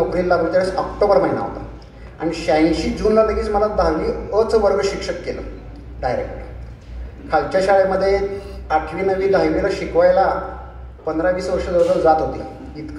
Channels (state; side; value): identical; both; correlation 1.00